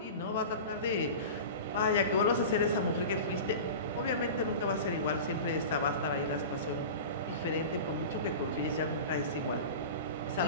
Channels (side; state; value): both; inverted; correlation -0.32